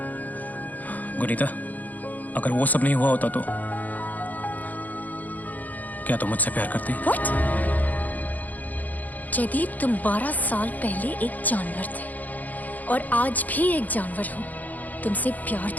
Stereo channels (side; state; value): right; late; 0.081 ms